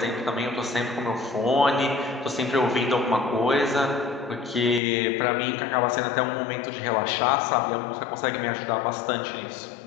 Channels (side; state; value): right; drops out; at 4.8 s